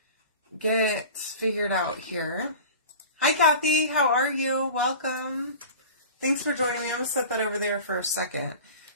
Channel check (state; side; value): inverted; both; correlation -0.38